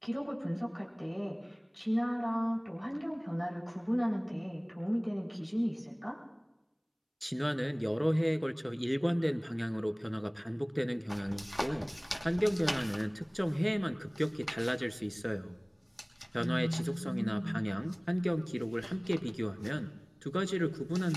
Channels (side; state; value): both; identical; correlation 1.00